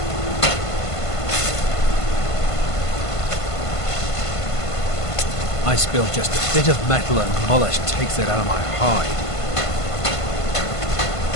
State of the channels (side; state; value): right; late; 1.5 ms